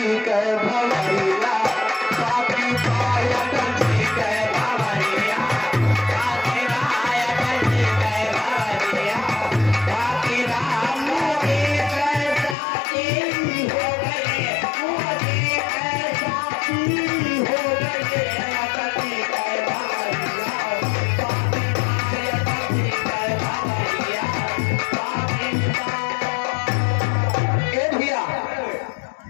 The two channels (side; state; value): right; drops out; at 12.6 s